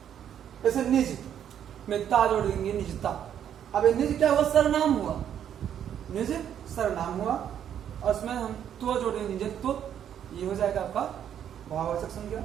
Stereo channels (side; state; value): left; quieter; 9.5 dB